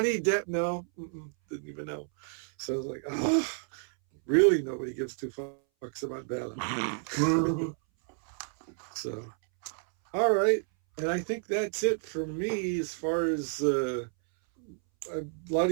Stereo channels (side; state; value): left; silent; 58 dB below the other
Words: Depp. No, didn't even know. So I was like, oh, really? Nobody gives two fucks about Bella. So, all right. And I think that's it for me as far as a lot